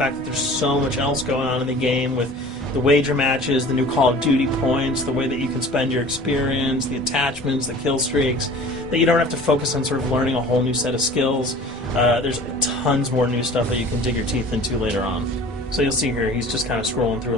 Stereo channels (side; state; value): both; normal; correlation 0.44